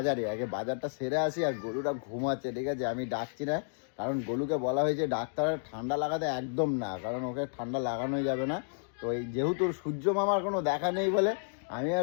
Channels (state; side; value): silent; right; digital silence